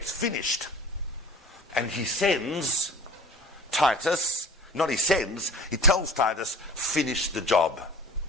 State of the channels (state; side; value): normal; both; correlation 0.41